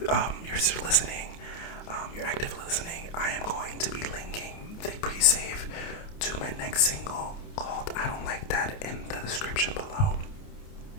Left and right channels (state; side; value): late; right; 29 ms